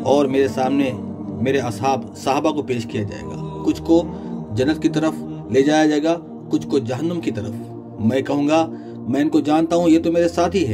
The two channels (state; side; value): identical; both; correlation 1.00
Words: और मेरे सामने मेरे असहाब साहबा को पेश किया जाएगा। कुछ को जन्नत की तरफ ले जाया जाएगा, कुछ को जहन्नुम की तरफ। मैं कहूँगा मैं इनको जानता हूँ, ये तो मेरे साथी